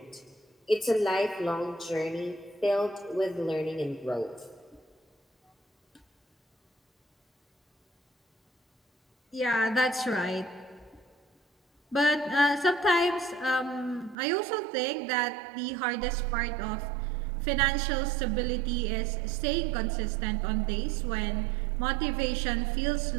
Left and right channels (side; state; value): left; drops out; at 14.2 s